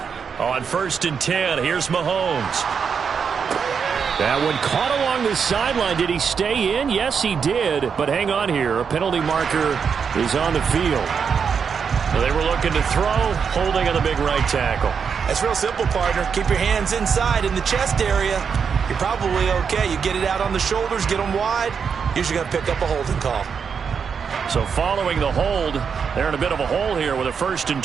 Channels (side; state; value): left; quieter; 6.4 dB